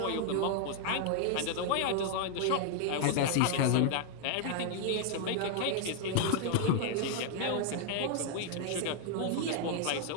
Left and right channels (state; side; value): different; both; correlation 0.00